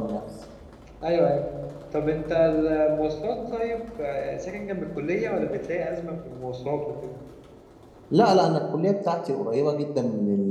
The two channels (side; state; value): both; identical; correlation 1.00